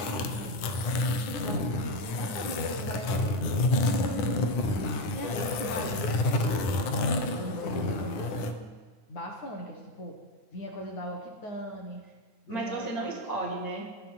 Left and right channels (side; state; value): right; late; 9.9 ms